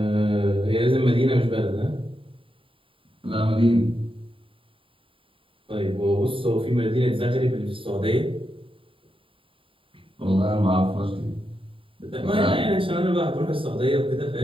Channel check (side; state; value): left; late; 0.25 ms